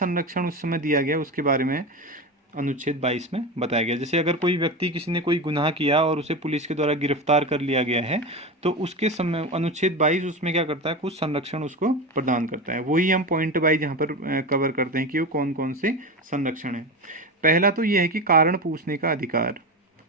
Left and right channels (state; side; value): normal; both; correlation 0.22